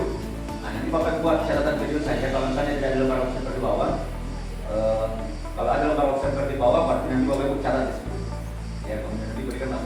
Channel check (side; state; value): both; identical; correlation 1.00